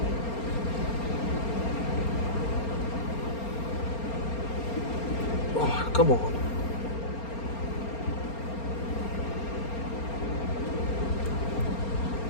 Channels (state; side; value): late; right; 4.3 ms